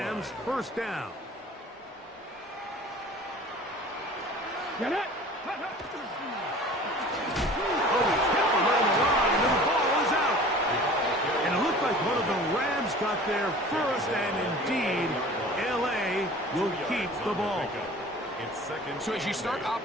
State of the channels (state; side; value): normal; both; correlation 0.44